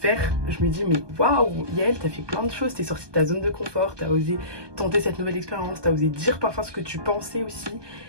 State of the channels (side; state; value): left; late; 1.2 ms